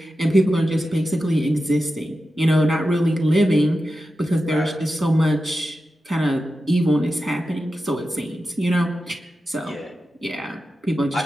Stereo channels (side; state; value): both; normal; correlation 0.91